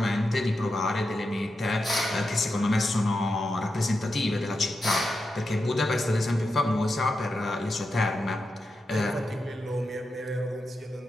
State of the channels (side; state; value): both; normal; correlation 0.88